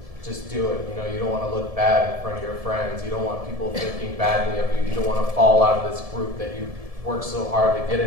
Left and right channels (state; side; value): late; left; 1.7 ms